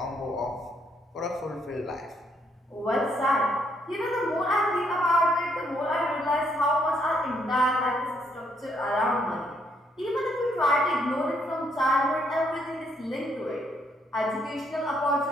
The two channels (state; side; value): normal; both; correlation 0.72